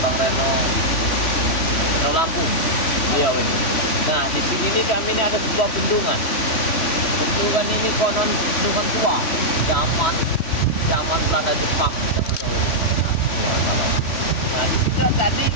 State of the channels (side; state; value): right; late; 3.1 ms